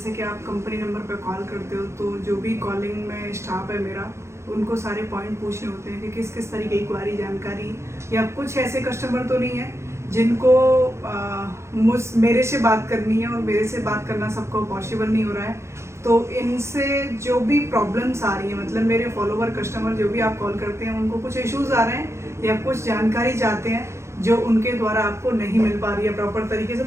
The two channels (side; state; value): left; late; 0.13 ms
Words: कि आप कंपनी नंबर पर कॉल करते हो तो जो भी कॉलिंग में स्टाफ है मेरा, उनको सारे पॉइंट पूछने होते हैं कि किस किस तरीके की क्वारी जानकारी, या कुछ ऐसे कस्टमर तो नहीं है जिनको मेरे से बात करनी है, और मेरे से बात करना सबको पॉसिबल नहीं हो रहा है। तो इनसे जो भी प्रॉब्लम्स आ रही हैं, मतलब मेरे फॉलोवर कस्टमर जो भी आप कॉल करते हैं, उनको कुछ इश्यूज आ रहे हैं या कुछ जानकारी चाहते हैं जो उनके द्वारा आपको नहीं मिल पा रही है प्रॉपर तरीके से,